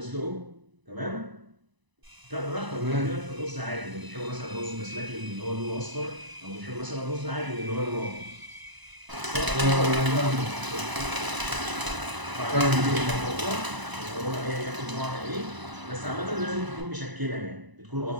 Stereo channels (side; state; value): left; late; 1.0 ms